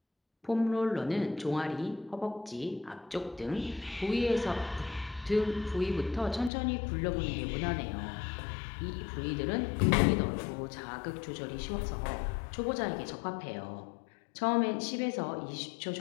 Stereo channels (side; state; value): right; drops out; at 6.5 s